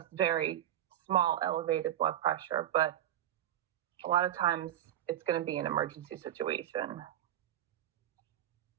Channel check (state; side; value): quieter; left; 11.8 dB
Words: very small elevated blood pressure, but a lot of times it's going to be an emergency situation.